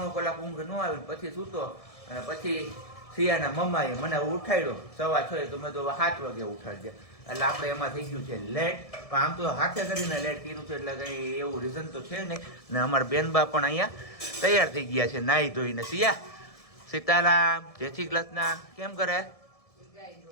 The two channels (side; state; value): right; late; 1.7 ms